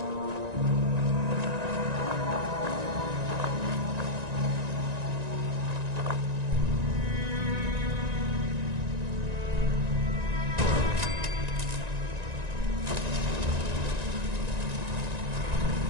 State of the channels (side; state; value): left; late; 1.9 ms